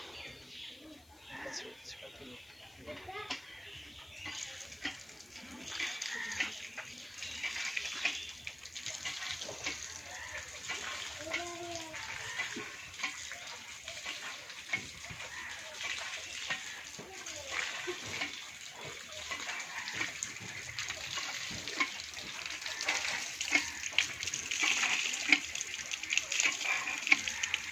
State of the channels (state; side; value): noise; left; hiss, 25 dB below the sound